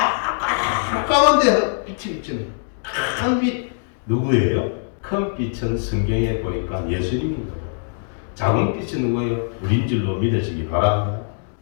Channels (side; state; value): right; silent; digital silence